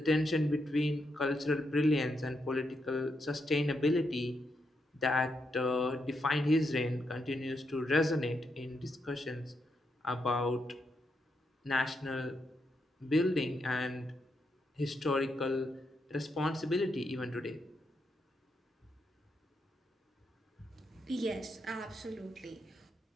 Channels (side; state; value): both; normal; correlation 0.82